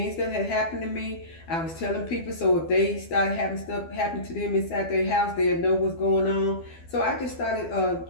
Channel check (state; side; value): late; right; 12 ms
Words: that had happened to me. I was telling people so if they started having stuff happen to them inside their house, they'll know what's going on. So I just started